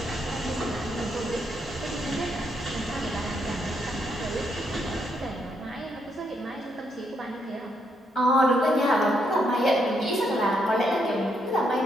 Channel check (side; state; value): both; normal; correlation 0.76